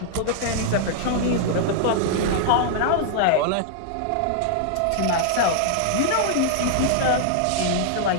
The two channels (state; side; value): different; both; correlation -0.01